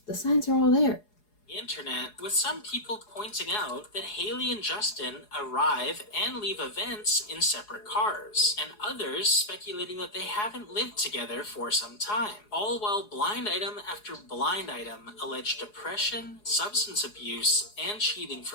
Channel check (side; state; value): right; late; 4.8 ms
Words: The signs are all there. The internet, with some people pointing out that Hailey and Justin arrive and leave events in separate cars, and others speculating that they haven't lived together for some time, all while blind item after blind item allege depression, substance abuse, and cheating